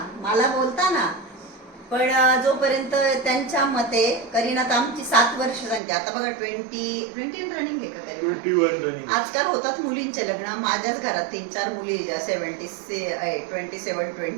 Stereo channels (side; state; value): left; drops out; at 5.8 s